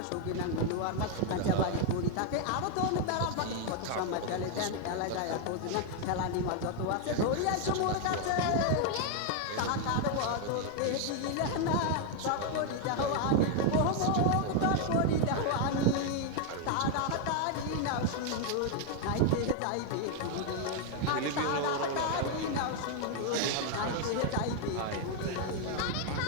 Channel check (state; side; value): different; both; correlation 0.00